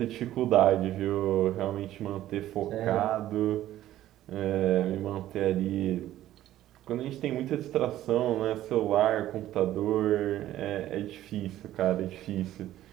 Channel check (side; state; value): left; quieter; 13.5 dB